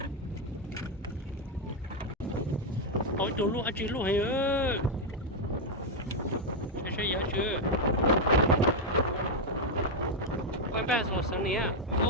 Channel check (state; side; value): normal; both; correlation 0.02